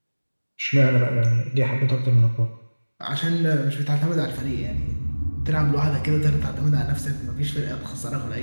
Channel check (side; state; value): both; inverted; correlation -1.00